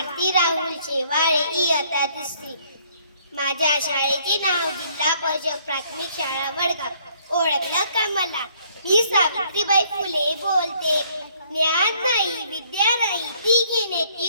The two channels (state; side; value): inverted; both; correlation -0.64